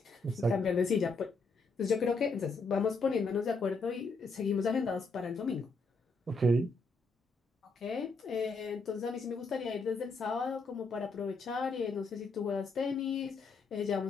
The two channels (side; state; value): right; quieter; 3.6 dB